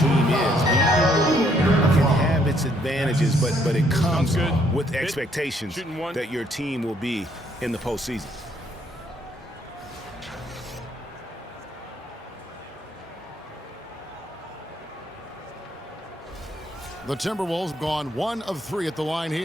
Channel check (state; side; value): normal; both; correlation 0.68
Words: is. It can have its advantages, but it comes with expectations that your team will be in the postseason. The Timberwolves have gone 1 of 3 at the line